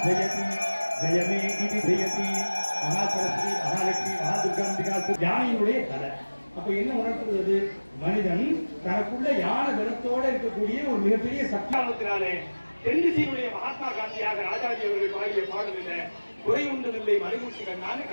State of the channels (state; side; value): inverted; both; correlation -1.00